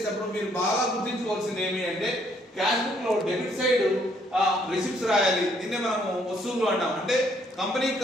మీరు బాగా గుర్తించుకోవాల్సింది ఏమి అంటే క్యాష్ బుక్ లో డెబిట్ సైడ్ రిసిప్ట్స్ రాయాలి. దీన్నే మనము వసూళ్లు అంటాం. అంటే కంపెనీకి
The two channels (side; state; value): both; normal; correlation 0.68